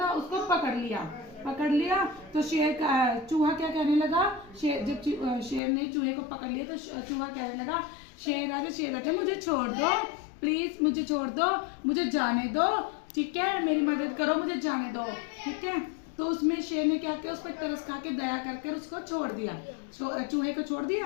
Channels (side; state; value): right; drops out; at 5.6 s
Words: उसको पकड़ लिया। तो चूहा क्या कहने लगा, जब शेर ने चूहे को पकड़ लिया तो चूहा कहने लगा, शेर आजा मुझे छोड़ दो, प्लीज मुझे छोड़ दो, मुझे जाने दो, ठीक है, मेरी मदद करो, मुझे जाने दो, ठीक है। तो उसमें शेर ने क्या किया, उस पर तरस खा के दया करके उसको छोड़ दिया, चूहे को छोड़